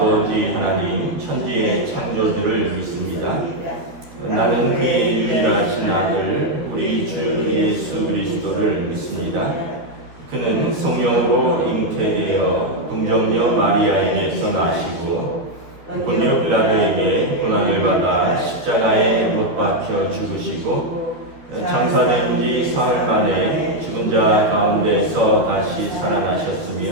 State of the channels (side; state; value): left; late; 13 ms